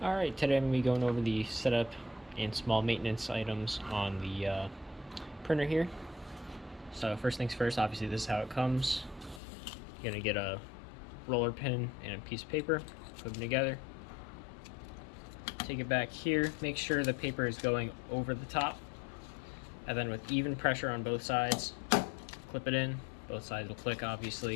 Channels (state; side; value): drops out; right; at 9.4 s